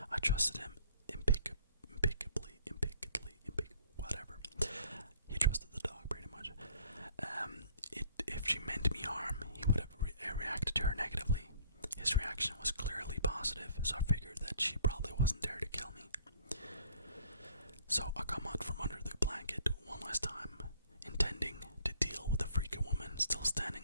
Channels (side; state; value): both; inverted; correlation -0.56